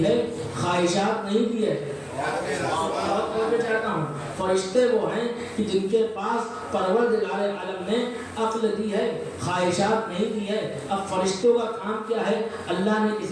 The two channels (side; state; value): both; identical; correlation 1.00